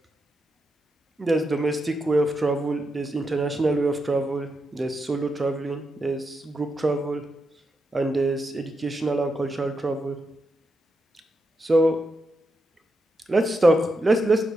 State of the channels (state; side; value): normal; both; correlation 0.85